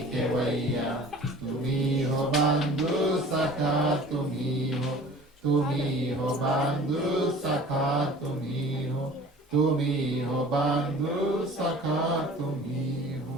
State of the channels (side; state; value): both; normal; correlation 0.45